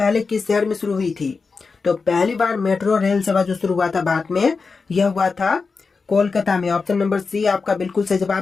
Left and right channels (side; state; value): right; quieter; 4.6 dB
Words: किस शहर में शुरू हुई थी? तो पहली बार मेट्रो रेल सेवा जो शुरू हुआ था भारत में यह हुआ था कोलकाता में। ऑप्शन नंबर सी आपका बिल्कुल सही